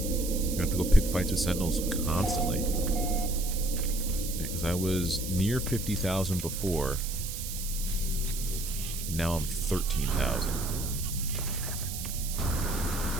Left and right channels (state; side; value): noise; right; hiss, 7 dB below the sound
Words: I have to go pick fights with Sentinels constantly. Because I was near 50,000 before. And now I'm 13,000.